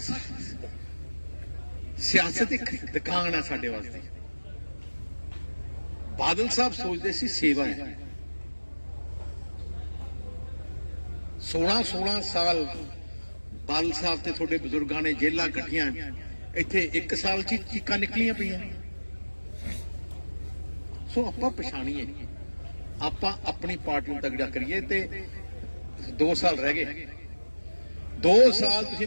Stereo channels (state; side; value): inverted; both; correlation -1.00